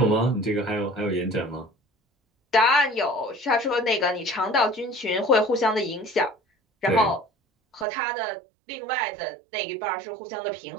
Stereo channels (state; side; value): drops out; left; at 7.9 s